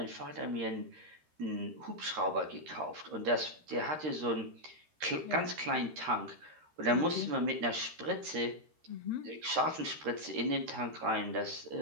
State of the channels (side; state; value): left; late; 13 ms